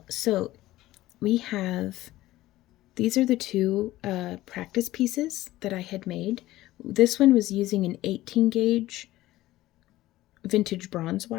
so these are the two practice pieces that I had made. This one was using an 18 gauge vintage bronze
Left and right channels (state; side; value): quieter; right; 16.3 dB